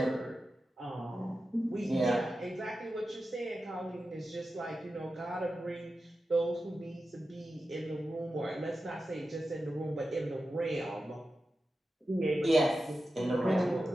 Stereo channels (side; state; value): both; normal; correlation 0.92